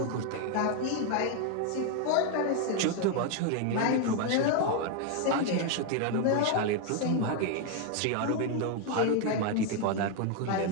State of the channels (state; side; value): different; both; correlation 0.00